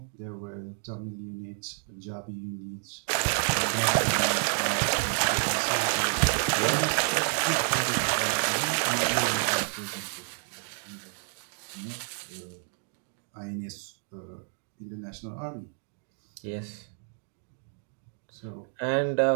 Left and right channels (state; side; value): silent; left; 58 dB below the other